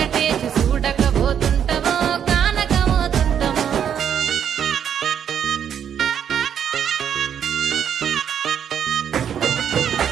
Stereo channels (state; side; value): quieter; left; 8.7 dB